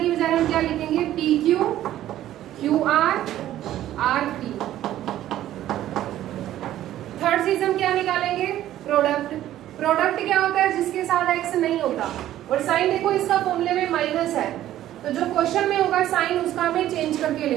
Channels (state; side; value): quieter; left; 13.0 dB